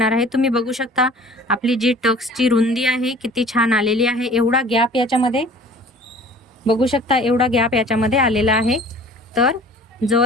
आहे. तुम्ही बघू शकता आपली जी टक्सची रुंदी आहे किती छान आलेली आहे. एवढा गॅप याच्यामध्ये बघू शकता, एवढा गॅप याच्यामध्ये आलेला आहे. तर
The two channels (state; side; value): normal; both; correlation 0.47